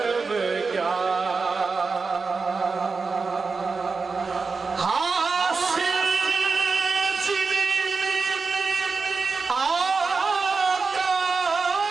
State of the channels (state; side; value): quieter; left; 4.5 dB